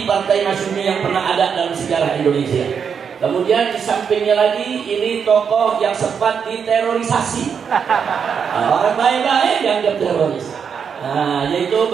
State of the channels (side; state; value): left; quieter; 6.8 dB